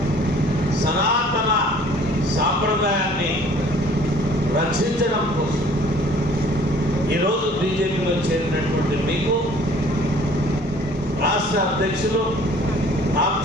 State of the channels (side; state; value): both; normal; correlation 0.53